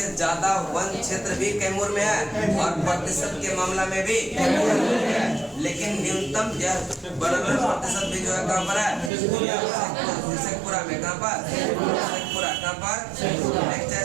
ज्यादा वन क्षेत्र भी कैमूर में है और प्रतिशत के मामला में भी कैमूर में है। लेकिन न्यूनतम यह वनावरण प्रतिशत भी जो है कहाँ पर है? शेखपुरा में। कहाँ पर? शेखपुरा। कहाँ पर? नेक्स्ट है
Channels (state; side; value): drops out; left; at 9.1 s